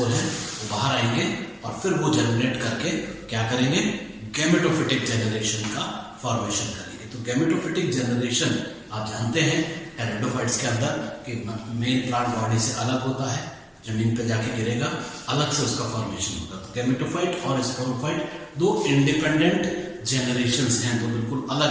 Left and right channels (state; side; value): identical; both; correlation 1.00